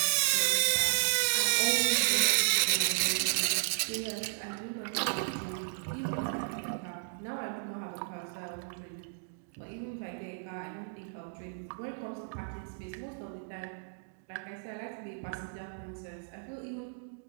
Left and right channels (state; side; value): silent; left; digital silence